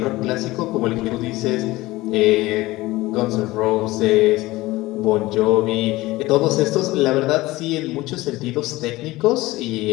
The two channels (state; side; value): quieter; right; 19.1 dB